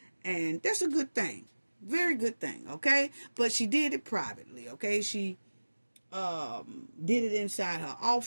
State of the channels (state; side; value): inverted; both; correlation -1.00